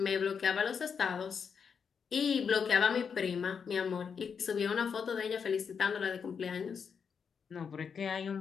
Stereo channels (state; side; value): quieter; right; 6.5 dB